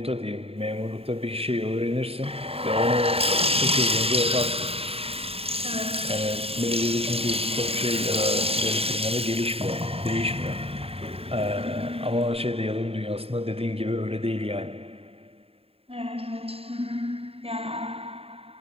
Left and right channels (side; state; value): left; late; 0.28 ms